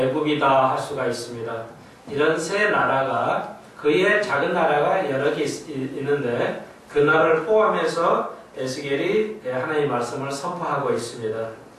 할 수가 있습니다. 이런 세 나라가 그의 작은 나라가 여러 개 있는데 그 나라를 포함해서 에스겔이 하나님의 말씀을 선포하고 있습니다.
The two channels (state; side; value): identical; both; correlation 1.00